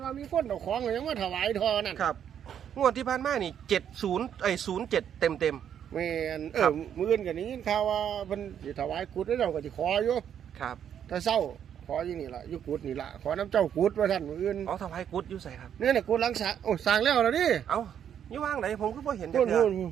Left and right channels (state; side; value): quieter; left; 9.1 dB